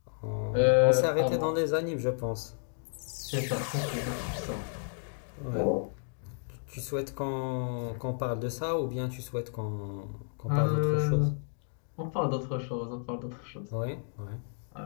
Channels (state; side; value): silent; right; digital silence